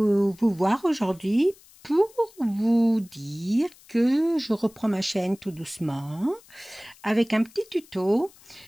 voir aujourd'hui pour vous dire que je reprends ma chaîne tout doucement avec un petit tuto.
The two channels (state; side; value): noise; left; hiss, 26 dB below the sound